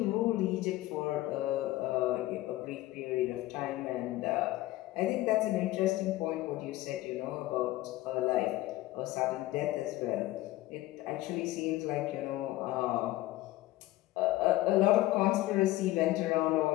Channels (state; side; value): quieter; right; 17.0 dB